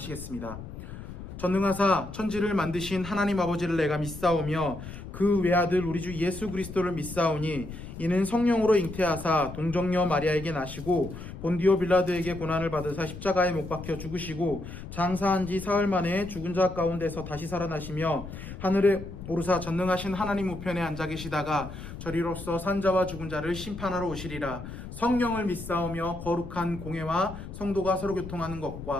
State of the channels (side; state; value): left; noise; rumble, 11 dB below the sound